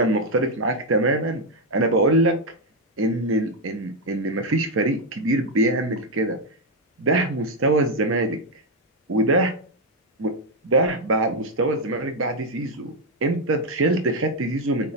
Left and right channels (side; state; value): both; normal; correlation 0.03